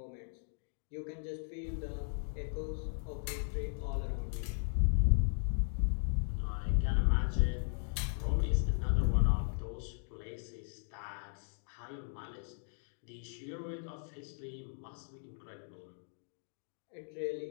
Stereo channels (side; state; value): right; silent; 53 dB below the other